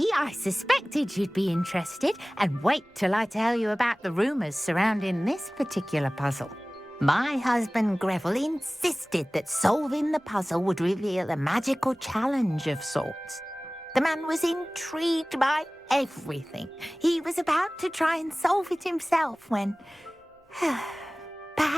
I suspected you'd be interested, and wait till I tell you about the rumours surrounding this particular puzzle. My husband Greville insisted that solving the puzzle would reveal a magical challenge of sorts. The man was intrigued by everything. He was about to try and solve it himself when...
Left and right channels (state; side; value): normal; both; correlation 0.98